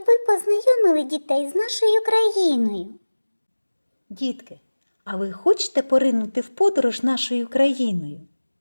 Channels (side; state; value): both; inverted; correlation -1.00